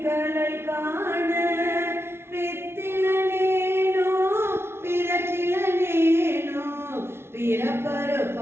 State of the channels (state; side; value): late; left; 0.12 ms